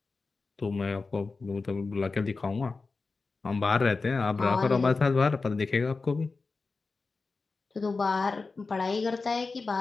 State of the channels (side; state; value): right; quieter; 4.1 dB